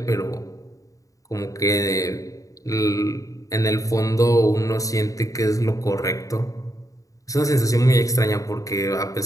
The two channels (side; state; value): right; late; 0.16 ms